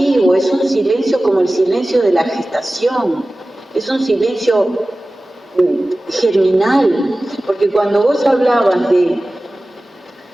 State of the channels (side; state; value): both; normal; correlation 0.97